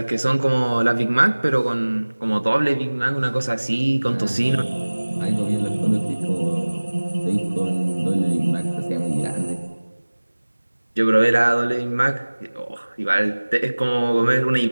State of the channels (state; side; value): inverted; both; correlation -1.00